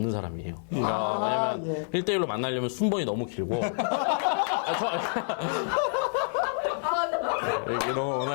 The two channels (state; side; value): silent; right; 59 dB below the other